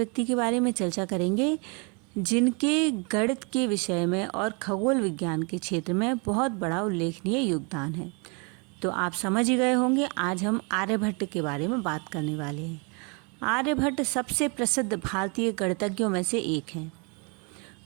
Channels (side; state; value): left; quieter; 33.5 dB